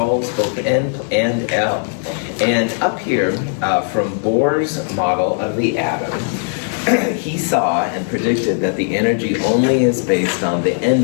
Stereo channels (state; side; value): silent; right; digital silence